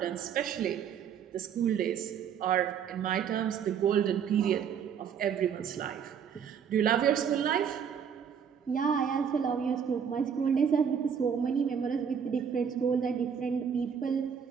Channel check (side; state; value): left; quieter; 7.6 dB